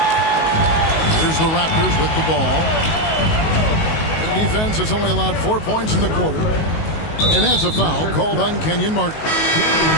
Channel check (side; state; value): right; late; 19 ms